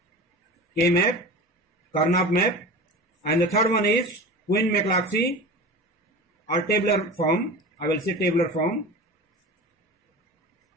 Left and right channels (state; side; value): normal; both; correlation 0.32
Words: Karnaugh map, and the third one is Quine-McClatchy or tabular form. I will say tabular form.